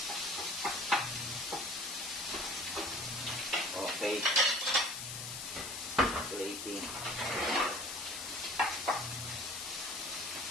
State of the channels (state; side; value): noise; left; hiss, 6 dB below the sound